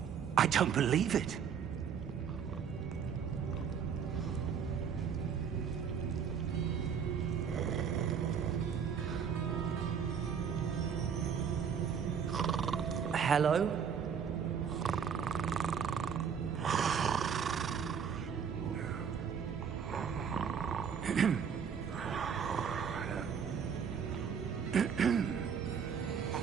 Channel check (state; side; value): quieter; left; 7.2 dB